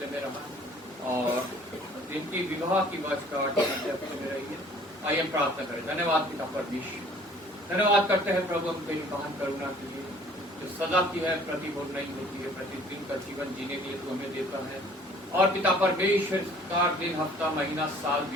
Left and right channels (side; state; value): both; normal; correlation 0.54